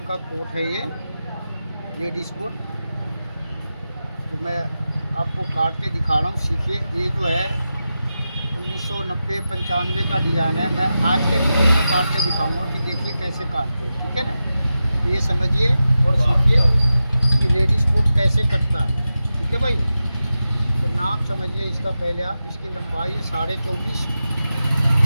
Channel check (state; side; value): inverted; both; correlation -0.92